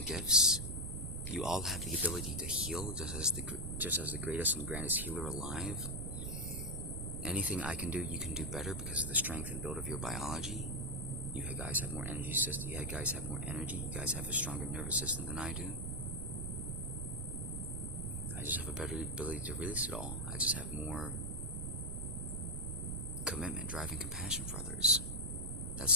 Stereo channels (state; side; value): noise; right; rumble, 4 dB below the sound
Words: gifts. You all have the ability to heal, just as the greatest and grandest healer alive. Anything I can do, you can do better because of the strength and build of your biology. You guys have more energy system. You guys have more energy. You guys have a stronger nervous system than I do. I just have a better ability to release it all. I just have more commitment, drive, and compassion for others.